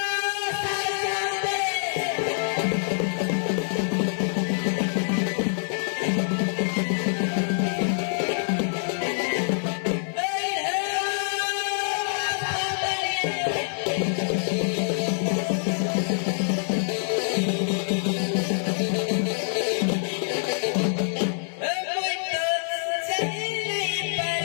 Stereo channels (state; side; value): silent; right; digital silence